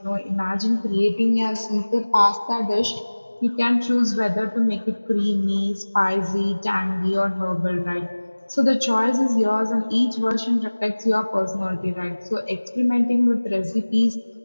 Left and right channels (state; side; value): inverted; both; correlation -1.00